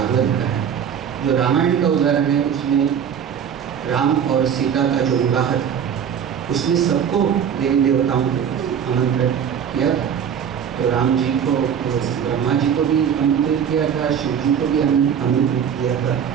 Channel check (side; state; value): left; quieter; 8.1 dB